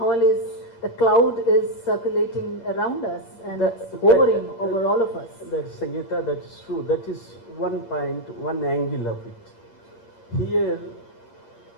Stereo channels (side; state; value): right; late; 11 ms